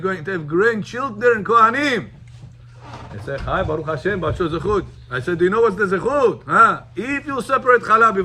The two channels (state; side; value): identical; both; correlation 1.00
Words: to have grandchildren, Kohanim. He said, hi, Baruch Hashem, Bacho zechut. I said, do you know what's the zechut? Huh? If you separate challah